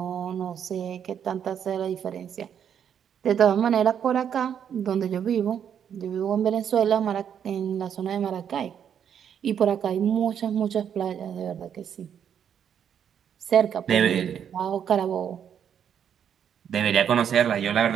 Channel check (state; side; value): quieter; left; 8.5 dB